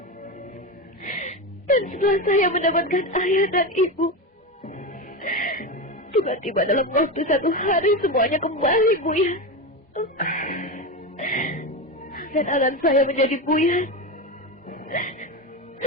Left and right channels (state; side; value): normal; both; correlation 0.18